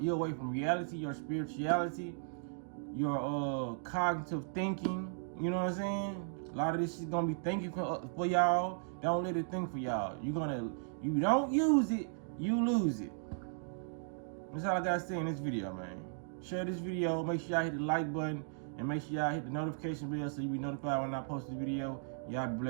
away from reality, your spirituality, your cognitive thinking. You know what I'm saying? A lot of this shit gonna be thinking for y'all. Don't let it think for y'all. You don't use it, you lose it. That's all I gotta say in this video, man. Share this video. Make sure y'all hit the like button, and make sure y'all hit the notification bell so you be notified when I post this video. Y'all be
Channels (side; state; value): left; silent; digital silence